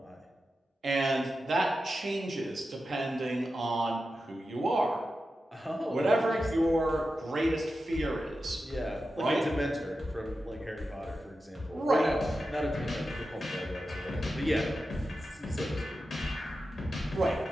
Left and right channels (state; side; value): normal; both; correlation 0.91